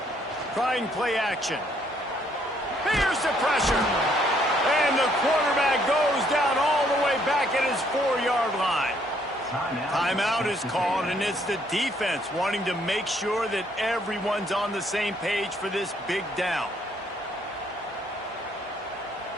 Trying play action. Here's the pressure. And the quarterback goes down all the way back at his 4-yard line. Timeout is called, and it's the defense wanting to make sure that everyone's on the same page for this big down.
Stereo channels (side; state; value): both; normal; correlation 0.67